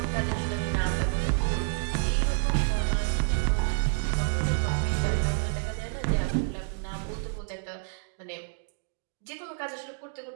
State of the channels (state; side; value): silent; left; digital silence